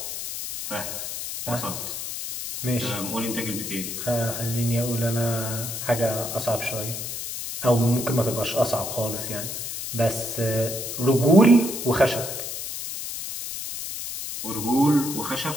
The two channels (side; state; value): left; noise; hiss, 6 dB below the sound